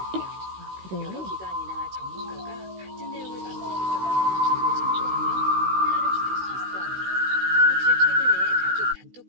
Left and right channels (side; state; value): left; late; 16 ms